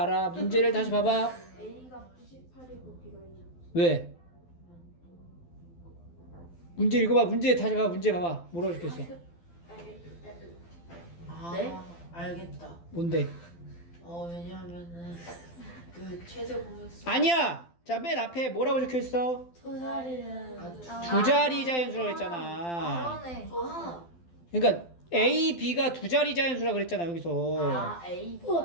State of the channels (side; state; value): right; late; 12 ms